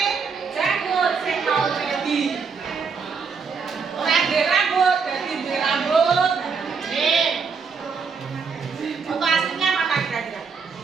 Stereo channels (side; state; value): left; quieter; 5.5 dB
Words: janggut sing mau ready. Ora ndek rambut, dadi ndek rambut. Nih. Foto aslinya mana kira-kira?